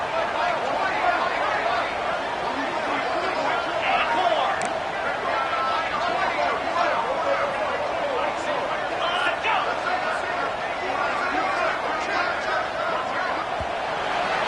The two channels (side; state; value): both; identical; correlation 1.00